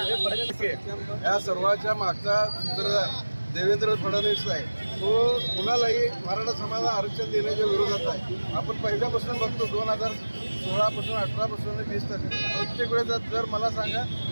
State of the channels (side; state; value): both; inverted; correlation -1.00